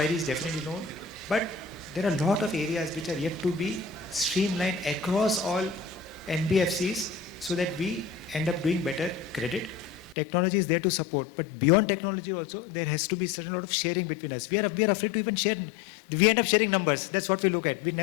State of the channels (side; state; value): right; drops out; at 10.2 s